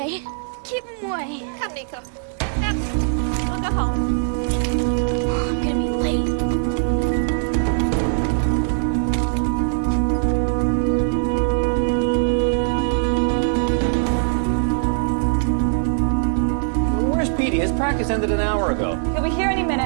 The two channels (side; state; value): left; silent; digital silence